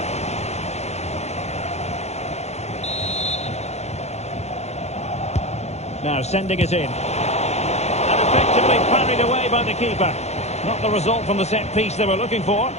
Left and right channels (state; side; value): late; right; 0.32 ms